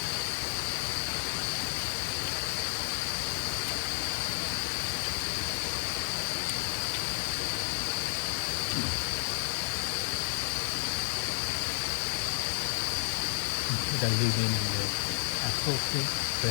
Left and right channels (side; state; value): right; silent; digital silence